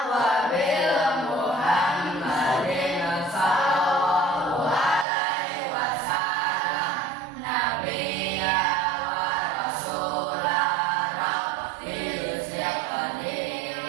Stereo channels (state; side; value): drops out; left; at 5.1 s